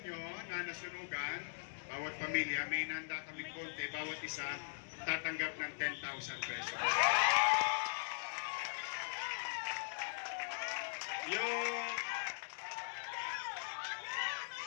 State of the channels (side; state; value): right; silent; digital silence